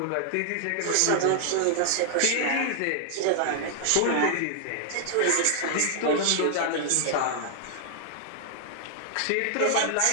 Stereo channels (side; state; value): both; different; correlation 0.00